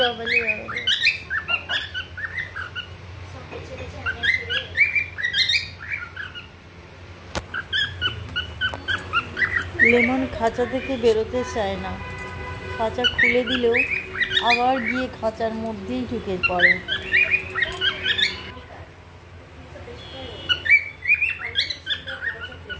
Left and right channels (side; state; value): both; identical; correlation 1.00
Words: বাবালে। লেমন খাঁচা থেকে বেরোতে চায় না, খাঁচা খুলে দিলেও আবার গিয়ে খাঁচার মধ্যেই ঢুকে পড়ে।